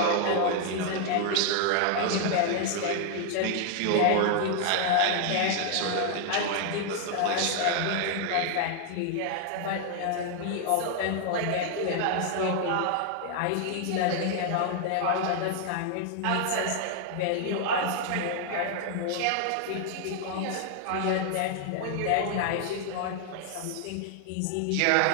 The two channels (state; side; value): different; both; correlation 0.00